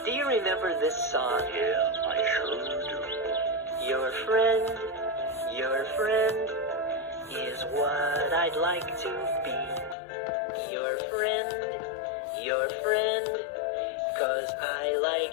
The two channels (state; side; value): drops out; right; at 10.0 s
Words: Do you remember this song? Yeah, I sure do. Your friend is what I'd like to be. Your friend, 'cause I like